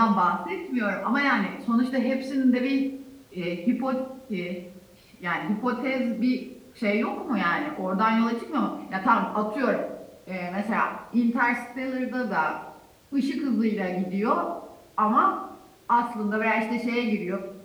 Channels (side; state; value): both; identical; correlation 1.00